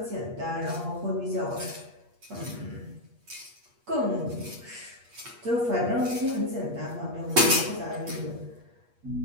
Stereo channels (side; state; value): left; late; 8.4 ms